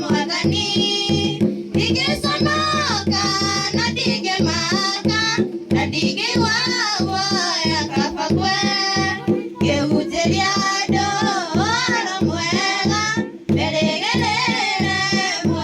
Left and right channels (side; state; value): both; identical; correlation 1.00